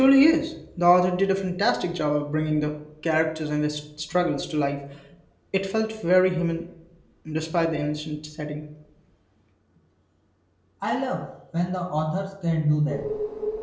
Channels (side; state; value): both; identical; correlation 1.00